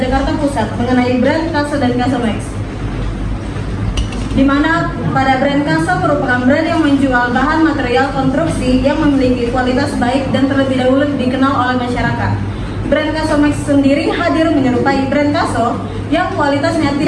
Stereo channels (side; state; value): both; identical; correlation 1.00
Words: Jakarta Pusat mengenai brand Kaso dan Kaso Max, di mana pada brand Kaso merupakan brand yang menjual bahan material konstruksi yang memiliki kualitas baik dan terlebih dahulu dikenal oleh masyarakat. Brand Kaso Max sendiri hadir menyerupai brand Kaso yang kualitasnya